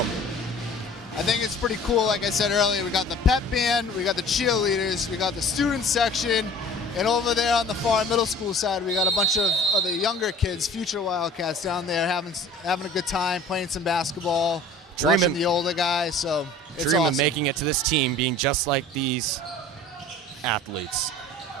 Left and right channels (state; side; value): normal; both; correlation 0.46